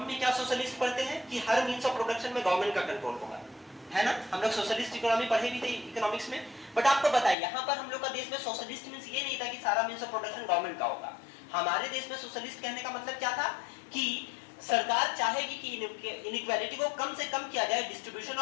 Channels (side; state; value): right; drops out; at 7.4 s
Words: में क्या सोशलिस्ट पढ़ते हैं कि हर मींस ऑफ प्रोडक्शन में गवर्नमेंट का कंट्रोल होगा, है ना। हम लोग सोशलिस्ट इकोनॉमी पढ़े भी थे इकोनॉमिक्स में। बट आपको बताइए यहाँ पर हम लोग का देश में सोशलिस्ट मींस ये नहीं था कि सारा मींस ऑफ प्रोडक्शन गवर्नमेंट का होगा। हमारे देश में सोशलिस्ट कहने का मतलब क्या था कि सरकार चाहेगी कि इनइक्वालिटी को कम से कम किया जाए, डिस्ट्रीब्यूशन